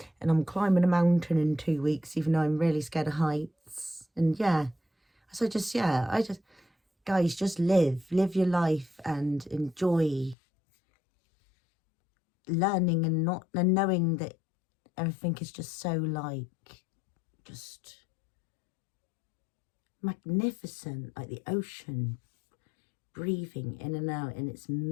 And I'm climbing a mountain in 2 weeks, even though I'm really scared of heights. And yeah, so guys, just live your life and enjoy learning and knowing that everything is just so like, just magnificent, like the ocean, breathing in and out in its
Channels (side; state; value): right; drops out; at 10.4 s